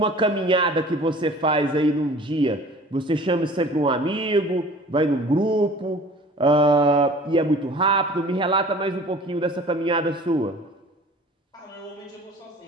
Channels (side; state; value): both; normal; correlation 0.46